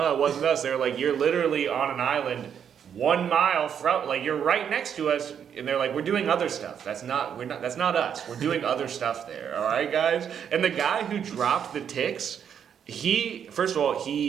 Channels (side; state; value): left; quieter; 8.2 dB